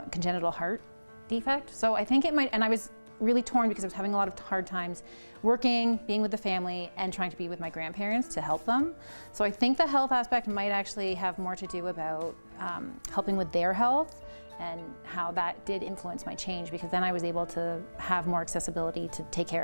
congenital heart defect. So I think it might, and I was really torn because I was having a lot of hard times working, being with the family, and trying to be with my grandparents to help them. So I think the health aspect might actually have more to do about helping with their health, and how that did influence my change, because then I was able to have more accessibility to take care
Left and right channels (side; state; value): both; inverted; correlation -1.00